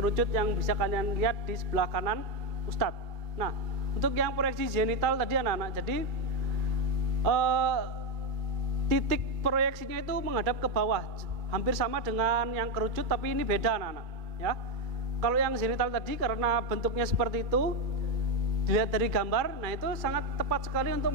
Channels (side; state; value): left; late; 2.3 ms